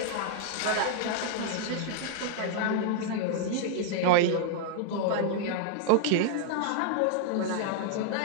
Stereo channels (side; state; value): both; different; correlation -0.01